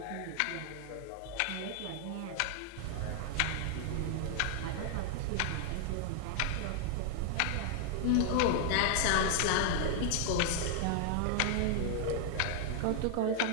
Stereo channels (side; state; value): both; different; correlation 0.00